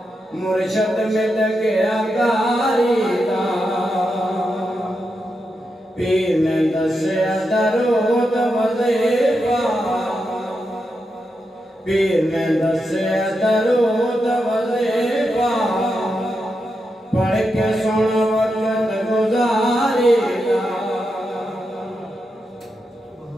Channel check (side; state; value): both; normal; correlation 0.86